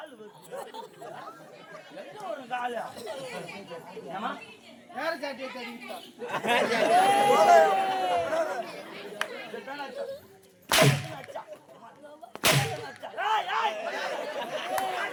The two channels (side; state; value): both; identical; correlation 1.00